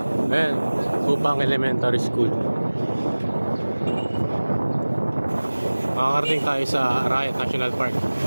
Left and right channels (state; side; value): inverted; both; correlation -1.00